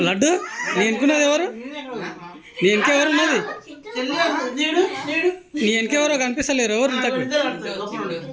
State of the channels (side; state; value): both; identical; correlation 1.00